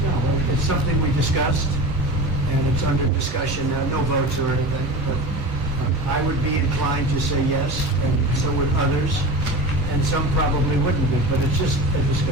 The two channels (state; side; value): normal; both; correlation 0.30